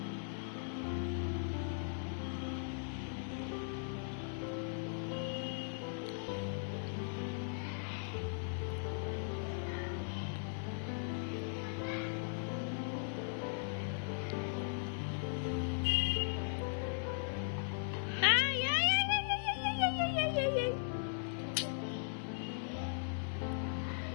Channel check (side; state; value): right; silent; digital silence